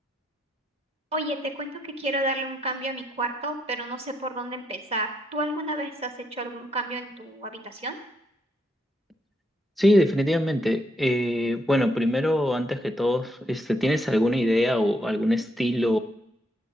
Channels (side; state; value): both; normal; correlation 0.77